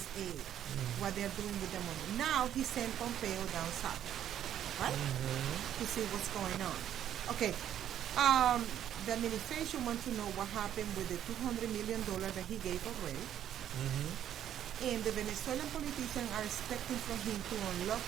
what they're doing with the money. Now he sent Pompeo down south, right, to see what's going on. Okay, the administration wants to know what happened with the $200 million that he gave already. And the Venezuelan politicians are expecting from him to unlock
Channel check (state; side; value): quieter; left; 10.6 dB